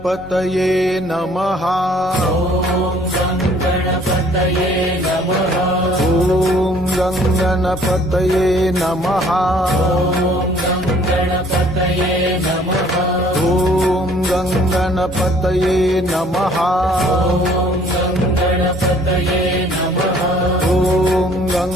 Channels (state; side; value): normal; both; correlation 0.57